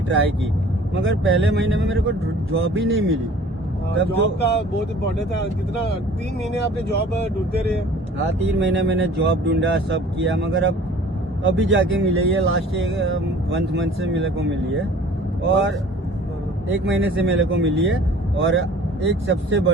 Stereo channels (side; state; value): both; normal; correlation 0.49